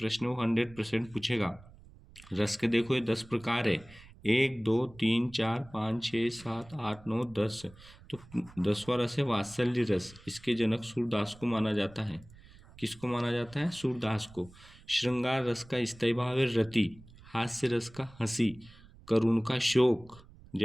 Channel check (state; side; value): noise; right; rumble, 22 dB below the sound